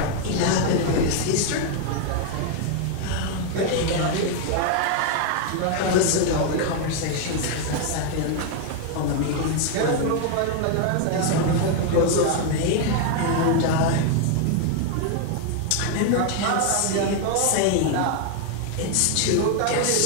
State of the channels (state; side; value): different; both; correlation 0.00